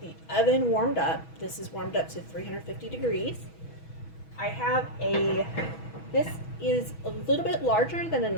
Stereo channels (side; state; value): right; late; 6.2 ms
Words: oven warmed up. This is warmed up to 350 degrees. This is a little bit larger than a